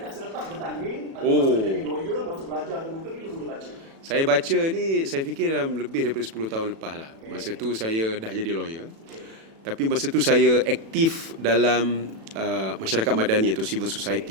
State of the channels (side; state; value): left; late; 36 ms